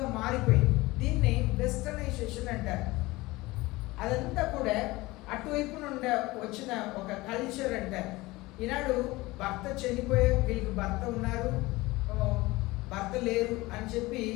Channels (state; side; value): quieter; right; 20.6 dB